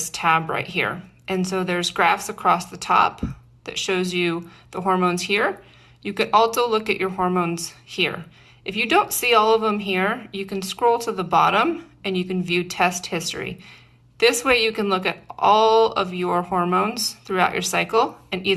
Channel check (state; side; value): identical; both; correlation 1.00